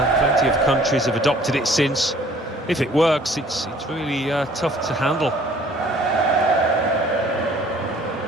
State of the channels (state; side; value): normal; both; correlation 0.55